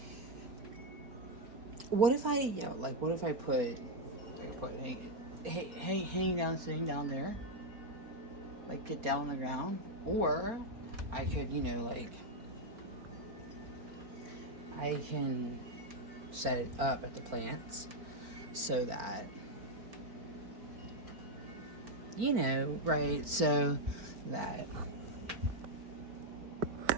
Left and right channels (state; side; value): late; left; 4.5 ms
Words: What if I, you know, like, what if I could put, hanging down, sitting down there, like, get down on the ground, or I could, you know, like, I can set it up at the plants so that, you know, right, so that